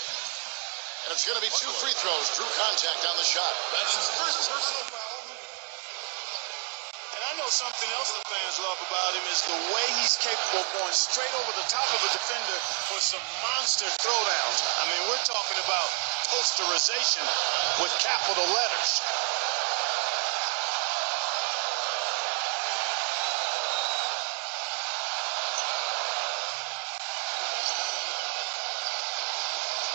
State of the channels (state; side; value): quieter; left; 39.6 dB